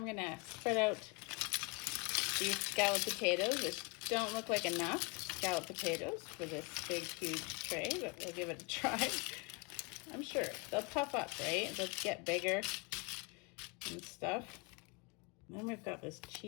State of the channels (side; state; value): right; quieter; 29.4 dB